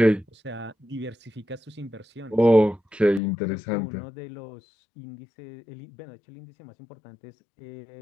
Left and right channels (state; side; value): drops out; right; at 3.2 s